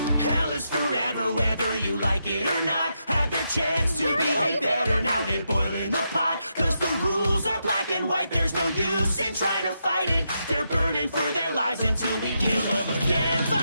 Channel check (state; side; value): inverted; both; correlation -0.83